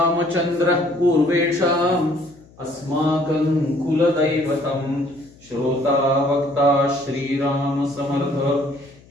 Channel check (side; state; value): left; noise; hum, 26 dB below the sound